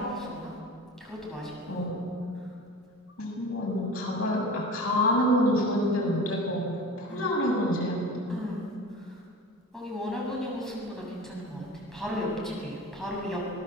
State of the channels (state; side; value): normal; both; correlation 0.35